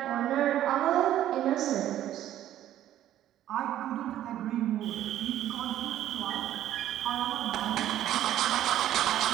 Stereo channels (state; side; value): quieter; left; 12.3 dB